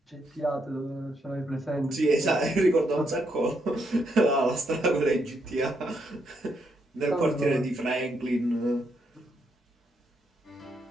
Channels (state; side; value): normal; both; correlation 0.78